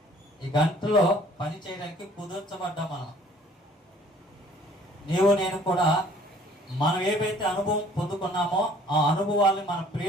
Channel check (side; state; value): both; normal; correlation 0.56